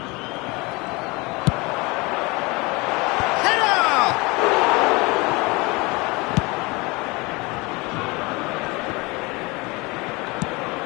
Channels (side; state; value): right; quieter; 25.2 dB